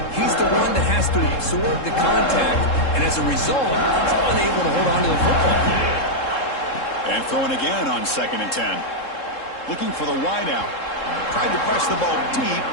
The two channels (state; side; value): late; right; 3.7 ms